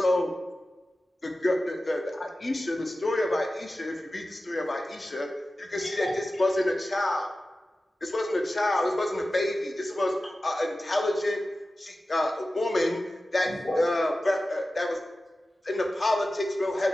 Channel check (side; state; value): both; normal; correlation 0.95